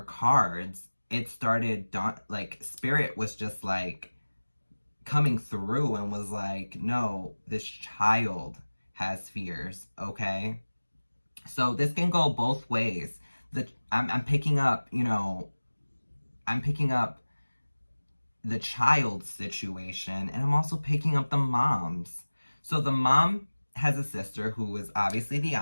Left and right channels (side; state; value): both; inverted; correlation -1.00